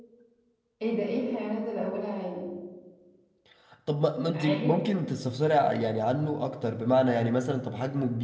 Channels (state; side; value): identical; both; correlation 1.00